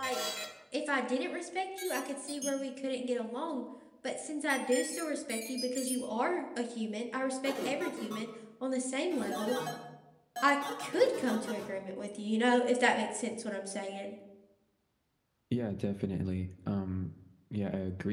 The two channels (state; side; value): identical; both; correlation 1.00